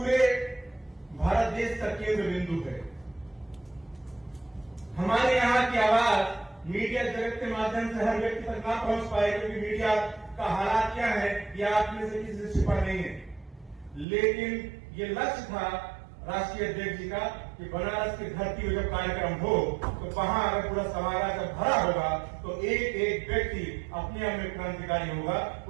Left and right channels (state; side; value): drops out; left; at 14.1 s